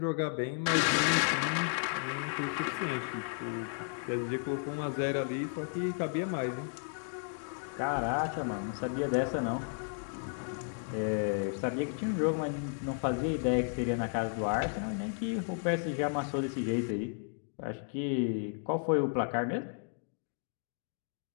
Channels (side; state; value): right; silent; 55 dB below the other